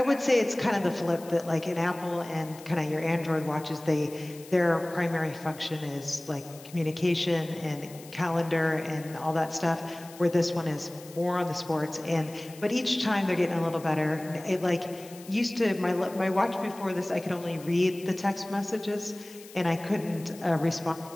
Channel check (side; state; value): left; noise; hiss, 19 dB below the sound